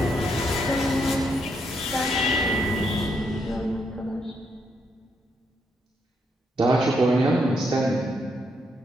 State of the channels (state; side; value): normal; both; correlation 0.77